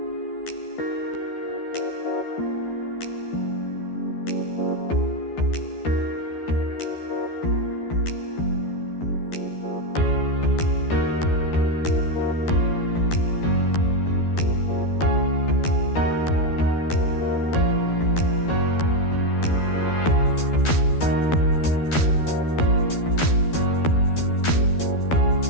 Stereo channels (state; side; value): late; right; 12 ms